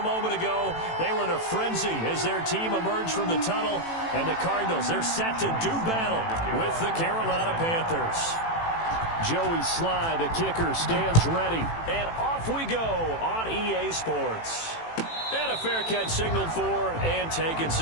a moment ago. They were in a frenzy as their team emerged from the tunnel. And the Cardinals, they're set to do battle with the Carolina Panthers. Joey Sly, the kicker, stands ready. And off we go on EA Sports. And a fair catch signaled for and taken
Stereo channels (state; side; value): late; right; 18 ms